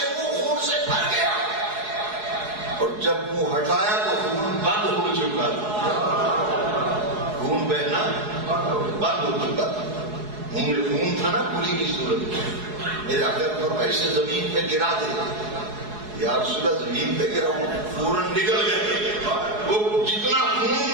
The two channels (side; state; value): left; late; 4.7 ms